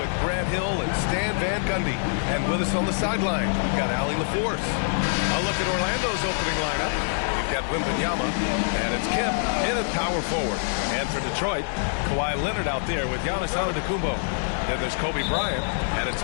Grant Hill and Stan Van Gundy. And with us on the sideline, we've got Allie LaForce. A look at Orlando's opening lineup. We've got Wembanyama, and it's Kemp in at power forward. And for Detroit, Kawhi Leonard out there with Giannis Antetokounmpo. Then there's Kobe Bryant, and it's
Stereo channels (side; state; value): right; silent; 62 dB below the other